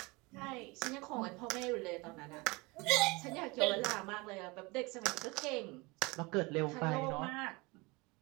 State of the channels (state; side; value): quieter; left; 25.1 dB